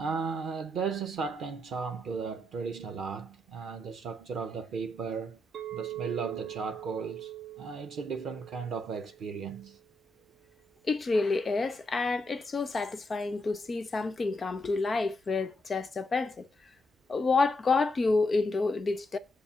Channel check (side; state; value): both; normal; correlation 0.81